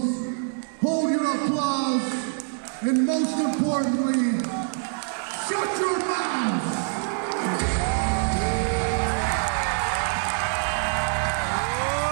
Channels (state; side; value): silent; left; 58 dB below the other